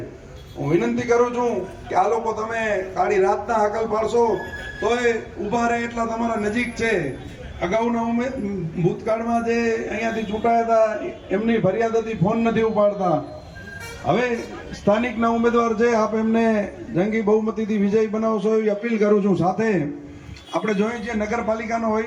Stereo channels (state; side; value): identical; both; correlation 1.00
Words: હું વિનંતી કરું છું કે આ લોકો તમે કાળી રાતના હાકલ પાડશો તોય ઊભા રહે એટલા તમારા નજીક છે। અગાઉના ભૂતકાળમાં જે અહીંયાથી ચૂંટાયા હતા એમની ફરિયાદ હતી, ફોન નથી ઉપાડતા। હવે સ્થાનિકના ઉમેદવાર છે, આપ એમને જંગી બહુમતીથી વિજય બનાવશો એવી અપીલ કરું છું। સાથે આપણે જોઈએ છીએ નગરપાલિકાનો